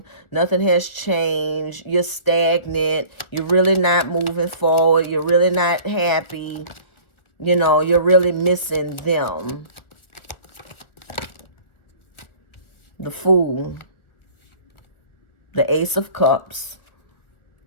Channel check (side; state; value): right; late; 1.5 ms